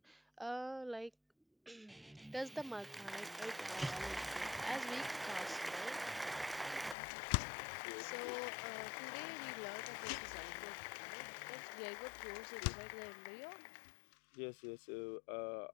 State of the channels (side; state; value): right; drops out; at 7.0 s